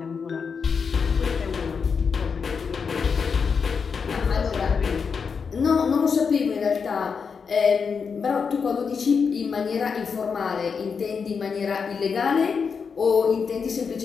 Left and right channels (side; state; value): right; quieter; 5.8 dB